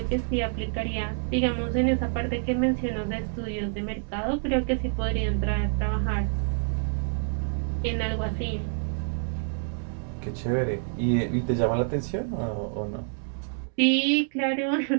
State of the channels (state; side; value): silent; left; 60 dB below the other